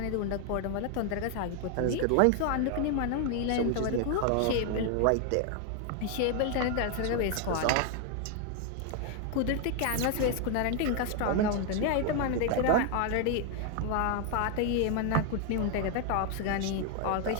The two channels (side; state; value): both; different; correlation 0.00